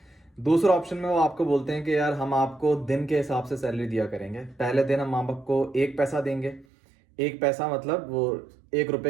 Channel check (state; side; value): drops out; left; at 6.7 s